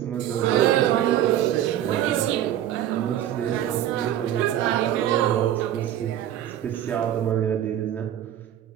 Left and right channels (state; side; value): quieter; left; 11.5 dB